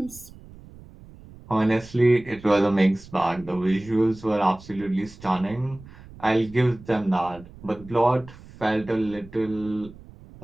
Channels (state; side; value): noise; right; rumble, 20 dB below the sound